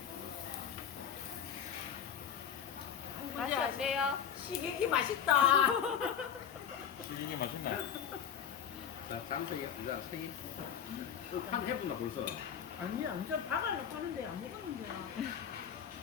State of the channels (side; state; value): right; quieter; 8.4 dB